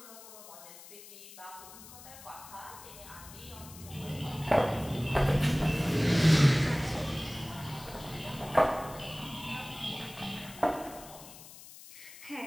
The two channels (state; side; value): noise; left; hiss, 17 dB below the sound